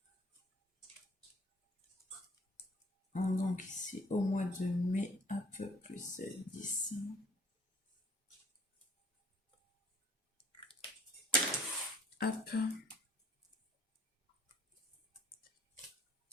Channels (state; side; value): normal; both; correlation 0.56